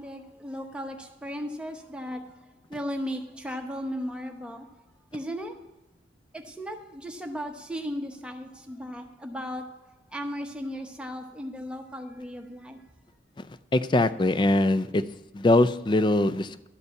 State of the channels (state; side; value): normal; both; correlation 0.74